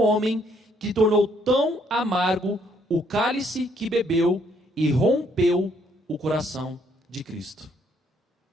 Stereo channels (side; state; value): both; normal; correlation 0.68